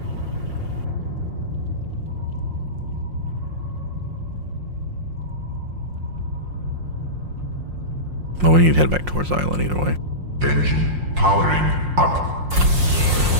Well, we need to head back towards the island either way. Engine powering up.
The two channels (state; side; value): late; left; 5.6 ms